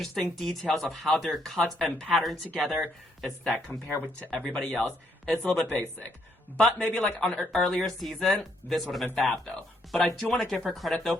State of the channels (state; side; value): normal; both; correlation 0.72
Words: details of how they're cut and patterned together. It's that compared to everybody else, it's a little bit basic. But maybe on an earlier season, this would have been fab though. But I do want to give her credit though